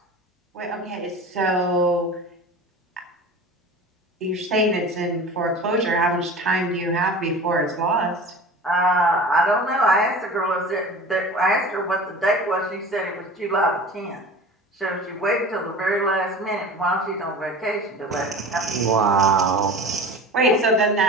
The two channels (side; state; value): both; normal; correlation 0.37